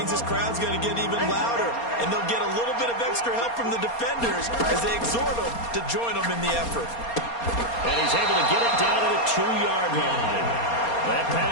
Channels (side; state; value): right; late; 4.3 ms